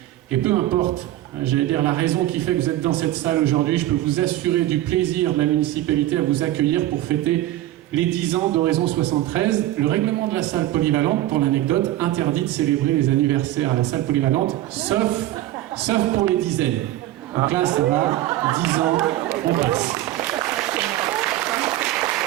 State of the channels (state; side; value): quieter; left; 14.8 dB